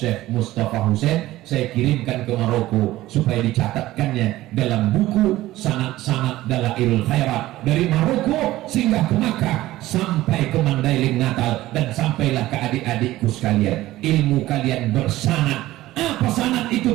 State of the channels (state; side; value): quieter; left; 16.2 dB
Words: Mustafa Hussein, saya kirimkan ke Maroko supaya dicatatkannya dalam buku sanad-sanad Dalailul Khairat dari Maroko sehingga ke Makkah, sampai ke Mandailing Natal, dan sampailah ke adik-adikku sekalian. Ilmu kalian bersanad. Apa sanad itu